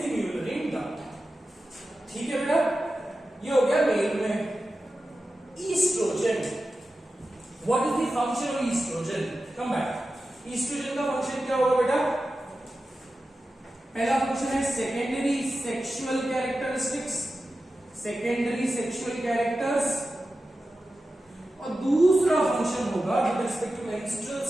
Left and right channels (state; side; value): normal; both; correlation 0.93